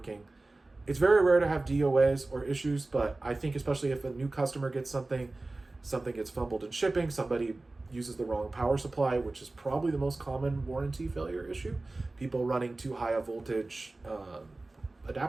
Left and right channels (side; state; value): left; quieter; 3.1 dB